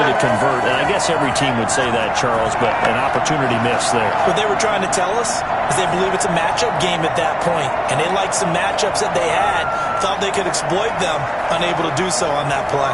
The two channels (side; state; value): both; identical; correlation 1.00